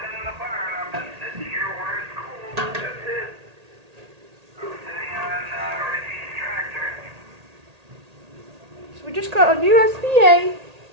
So we just got a new SBA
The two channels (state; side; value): late; left; 1.8 ms